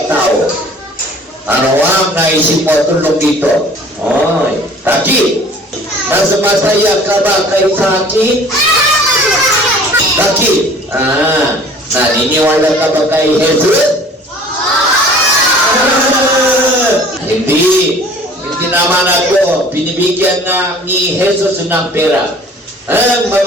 tao. Ano ang naisip mo tulong dito? Oy, Taki, mas masaya ka ba kay Taki? Taki, naniniwala ka ba kay Jesus? Hindi naman ako binibigyan ni Jesus ng pera. Ang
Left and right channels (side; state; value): both; normal; correlation 0.49